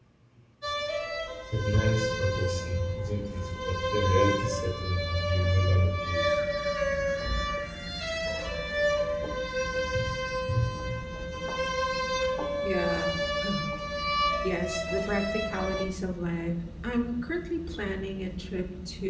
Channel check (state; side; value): identical; both; correlation 1.00